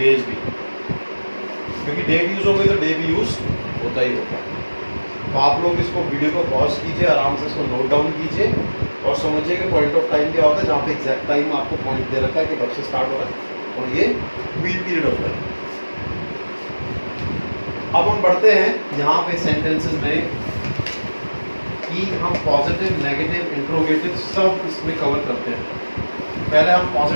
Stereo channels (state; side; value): inverted; both; correlation -1.00